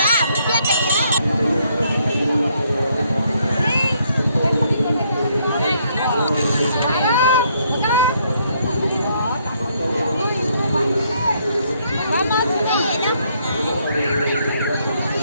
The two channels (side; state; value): both; inverted; correlation -0.70